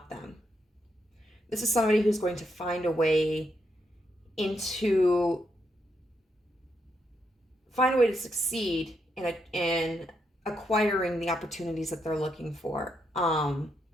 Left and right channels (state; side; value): normal; both; correlation 0.80